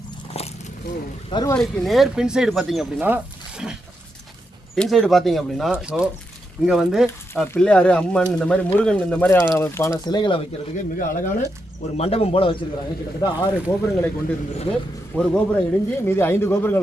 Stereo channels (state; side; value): normal; both; correlation 0.84